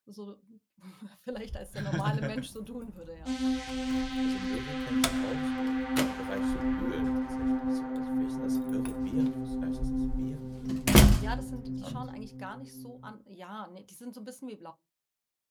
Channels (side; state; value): both; identical; correlation 1.00